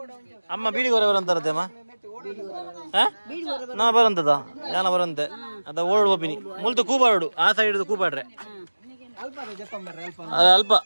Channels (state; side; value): inverted; both; correlation -1.00